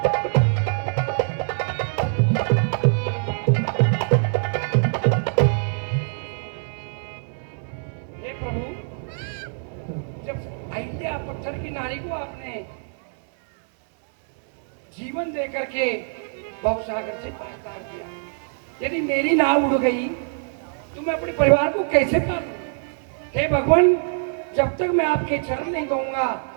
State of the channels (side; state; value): left; silent; digital silence